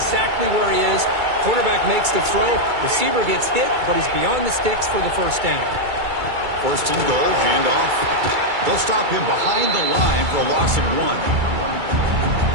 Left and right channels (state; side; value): late; left; 2.3 ms